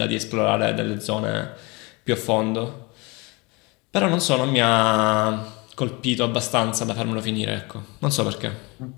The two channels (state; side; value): quieter; right; 26.9 dB